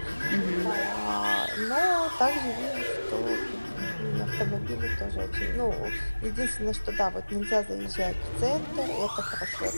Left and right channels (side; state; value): both; inverted; correlation -1.00